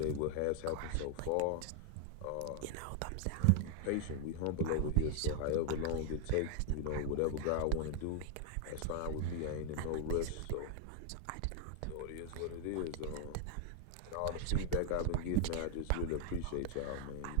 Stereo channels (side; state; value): both; different; correlation 0.00